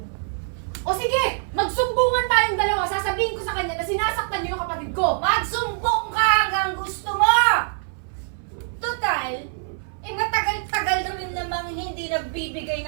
O sige, magsumbungan tayong dalawa. Sasabihin ko sa kanya na sinasaktan nyo yung kapatid ko. Magsumbong ka hanggang gusto mo! Total, matagal-tagal na rin namang hindi nagbibigay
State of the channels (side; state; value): left; silent; 59 dB below the other